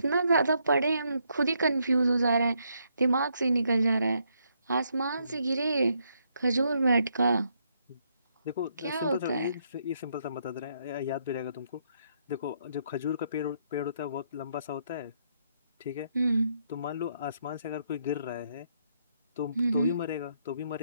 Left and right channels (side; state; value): both; inverted; correlation -0.74